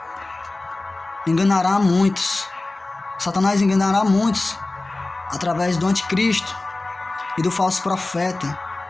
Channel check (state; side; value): quieter; right; 3.0 dB